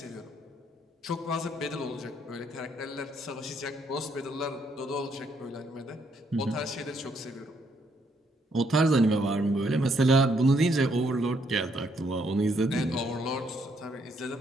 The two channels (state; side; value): normal; both; correlation 0.72